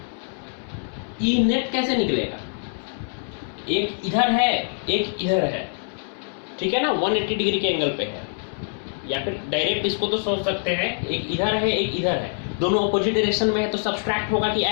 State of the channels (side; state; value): right; silent; 62 dB below the other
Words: E नेट कैसे निकलेगा? एक इधर है, एक इधर है, ठीक है ना, 180 डिग्री के एंगल पे है। या फिर डायरेक्ट इसको तो सोच सकते हैं, एक इधर है एक इधर है, दोनों अपोजिट डायरेक्शन में है, तो सब्सट्रैक्ट होगा कि